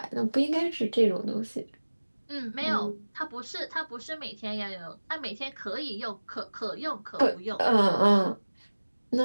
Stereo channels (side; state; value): both; inverted; correlation -1.00